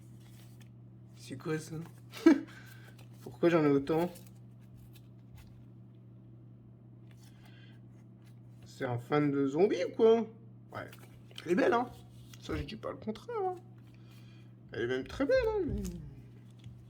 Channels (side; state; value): both; identical; correlation 1.00